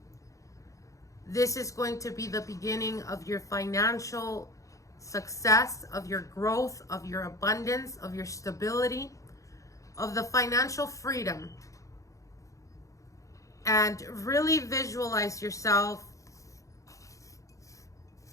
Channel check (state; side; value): late; right; 0.16 ms